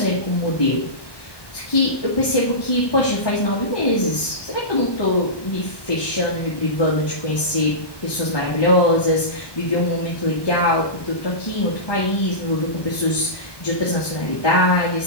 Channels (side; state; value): right; late; 1.2 ms